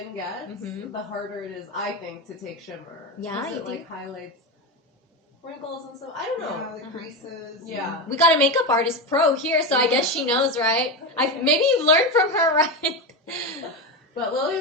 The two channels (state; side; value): normal; both; correlation 0.16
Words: gets, the harder it is, I think, to take shimmer. Yeah, it like highlights wrinkles and stuff. I don't know. Yeah, the creases. Yeah. We got a makeup artist pro here, so I guess she knows, right? Maybe you've learned from her, right? But